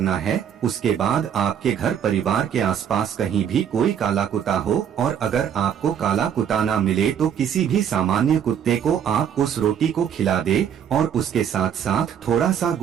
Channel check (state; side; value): quieter; left; 8.7 dB